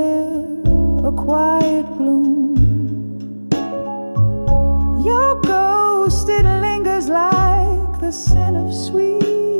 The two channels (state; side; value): inverted; both; correlation -1.00